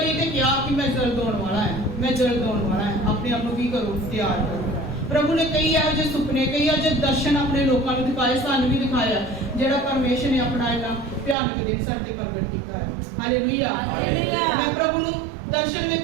ਤੇ ਕਿਹਾ ਕਿ ਮੈਂ ਜਲਦ ਆਉਣ ਵਾਲਾ ਹੈ, ਮੈਂ ਜਲਦ ਆਉਣ ਵਾਲਾ ਹੈ। ਆਪਣੇ ਆਪ ਨੂੰ ਕੀ ਕਰੋ? ਤਿਆਰ ਕਰੋ। प्रभु ने कई ਇਹੋ ਜਿਹੇ ਸੁਪਨੇ, ਕਈ ਇਹੋ ਜਿਹੇ ਦਰਸ਼ਨ ਆਪਣੇ ਲੋਕਾਂ ਨੂੰ ਦਿਖਾਏ, ਸਾਨੂੰ ਵੀ ਦਿਖਾਇਆ, ਜਿਹੜਾ ਪਰਮੇਸ਼ਰ ਨੇ ਆਪਣਾ ਇਹਨਾਂ ਭਿਆਨਕ ਦਿਨ ਸਾਡੇ ਤੇ ਪ੍ਰਗਟ ਕੀਤਾ ਹੈ। ਹਾਲੇਲੂਇਆ। ਮੈਂ ਪ੍ਰਭੂ ਨੂੰ ਦਰਸ਼ਨ ਦੇ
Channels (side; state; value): left; drops out; at 11.4 s